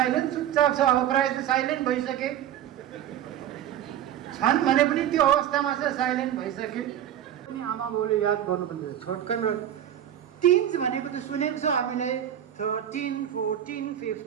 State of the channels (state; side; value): quieter; left; 10.8 dB